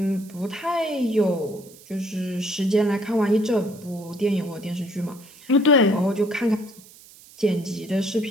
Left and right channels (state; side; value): noise; right; hiss, 22 dB below the sound